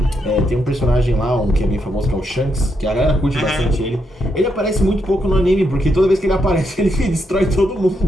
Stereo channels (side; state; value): both; normal; correlation 0.80